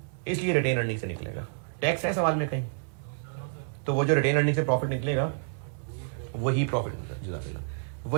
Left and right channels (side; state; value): left; silent; digital silence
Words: इसलिए रिटेन अर्निंग से निकलेगा। टैक्स है सवाल में कहीं, तो वो जो रिटेन अर्निंग से प्रॉफिट निकलेगा वही प्रॉफिट,